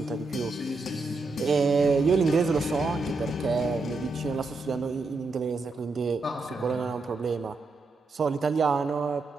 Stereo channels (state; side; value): quieter; left; 3.5 dB